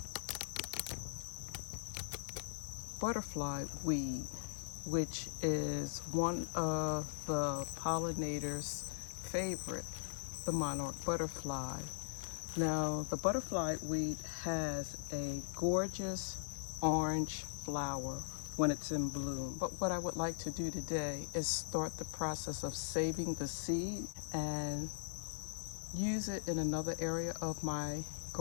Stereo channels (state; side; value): silent; right; digital silence